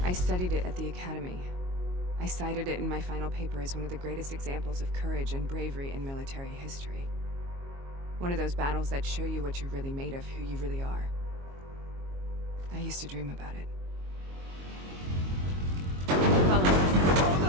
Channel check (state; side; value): late; left; 22 ms